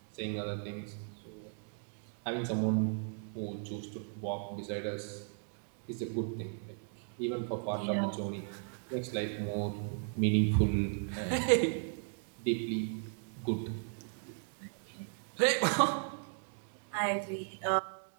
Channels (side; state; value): left; silent; 54 dB below the other